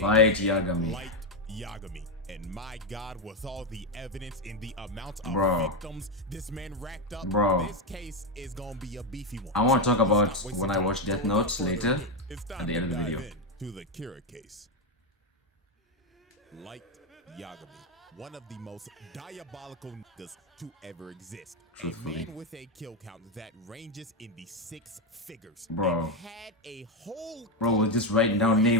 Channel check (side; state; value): both; normal; correlation 0.08